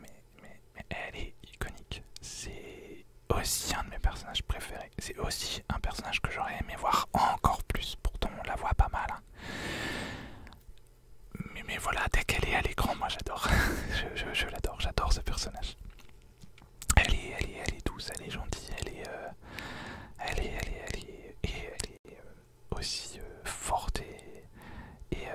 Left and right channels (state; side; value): identical; both; correlation 1.00